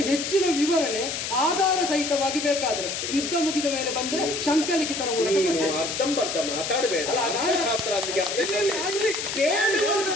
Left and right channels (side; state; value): left; noise; hiss, 4 dB below the sound